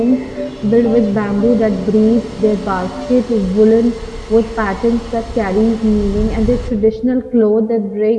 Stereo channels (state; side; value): identical; both; correlation 1.00